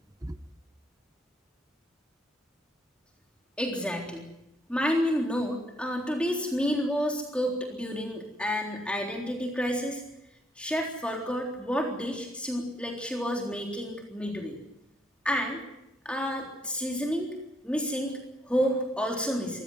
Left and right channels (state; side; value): normal; both; correlation 0.71